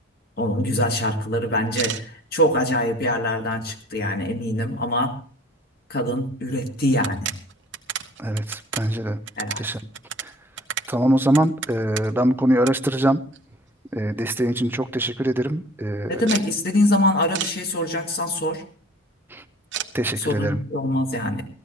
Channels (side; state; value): both; normal; correlation 0.50